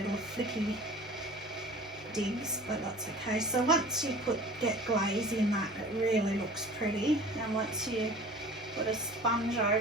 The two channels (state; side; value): normal; both; correlation 0.43